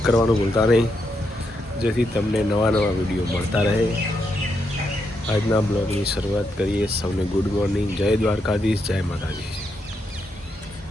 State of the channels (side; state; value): both; normal; correlation 0.81